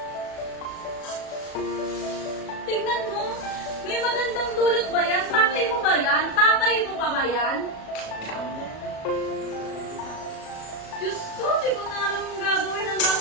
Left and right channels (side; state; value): right; late; 37 ms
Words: Tignan mo. May magandang dulot ba yan? Tatay mo ba yan? Tatay mo pa ba yan? Diyos ko, di ko na alam ang gagawin. Ang